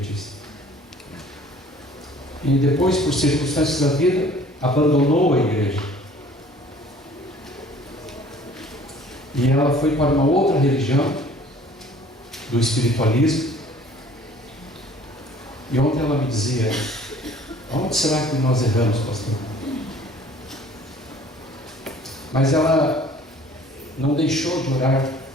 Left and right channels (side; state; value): both; normal; correlation 0.52